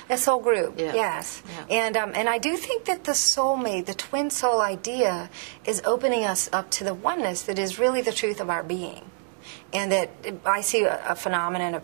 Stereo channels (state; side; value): silent; left; 61 dB below the other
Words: A soul group, yeah. Yes. Yeah. And I do think that the soulmate, the twin soul idea, is opening us up to the oneness that is really the truth of our being. And that I see a phenomenon of